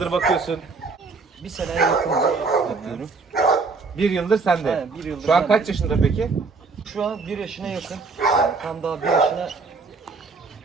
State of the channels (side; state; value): left; quieter; 4.3 dB